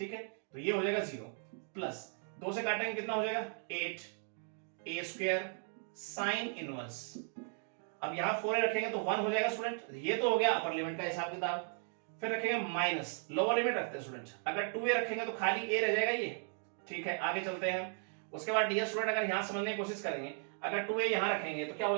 है, तो ये हो जाएगा 0 प्लस 2 से काटेंगे कितना हो जाएगा 8a स्क्वायर साइन इनवर्स, अब यहां 4a रखेंगे तो 1 हो जाएगा स्टूडेंट, ये तो हो गया अपर लिमिट का हिसाब किताब। फिर रखेंगे माइनस, लोअर लिमिट रखते हैं स्टूडेंट, अगर 2a रखेंगे तो खाली a रह जाएगा ये, ठीक है, आगे चलते हैं। उसके बाद डियर स्टूडेंट अगर यहां समझने की कोशिश करेंगे, अगर 2a यहां रखेंगे तो क्या हो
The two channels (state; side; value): silent; left; 53 dB below the other